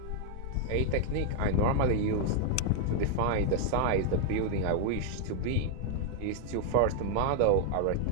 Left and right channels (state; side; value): different; both; correlation 0.00